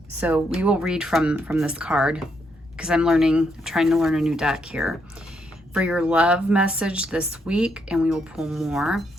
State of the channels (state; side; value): normal; both; correlation 0.76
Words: So we will read from this card, because I'm trying to learn a new deck here. For your love message this week, and we will pull more.